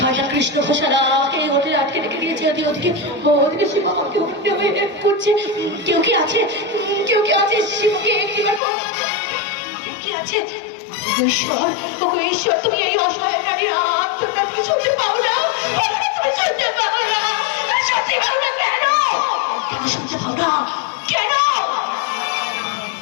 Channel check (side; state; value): right; drops out; at 8.6 s